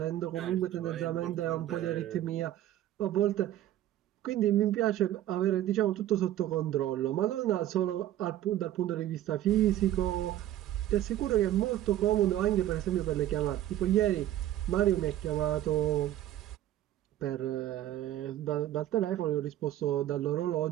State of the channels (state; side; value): quieter; left; 13.0 dB